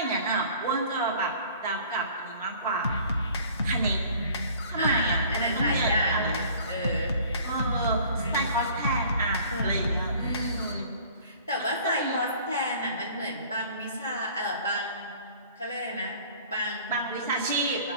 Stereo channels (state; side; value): inverted; both; correlation -0.50